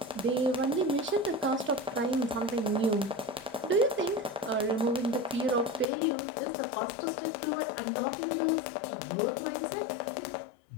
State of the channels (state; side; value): drops out; right; at 5.9 s